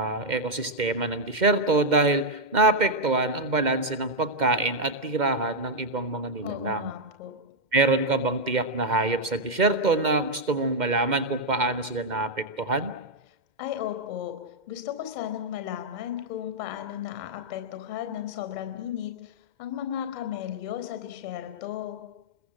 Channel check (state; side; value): late; left; 2.1 ms